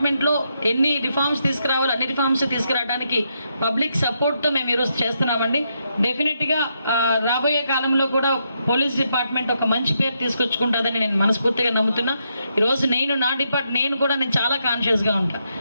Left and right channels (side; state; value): both; inverted; correlation -0.80